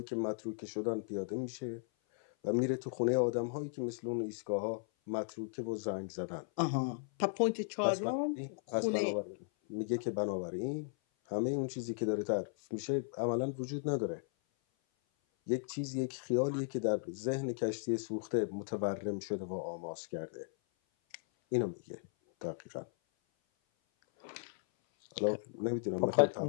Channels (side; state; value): right; silent; 54 dB below the other